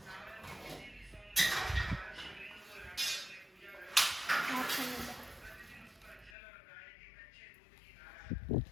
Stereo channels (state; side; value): drops out; right; at 6.4 s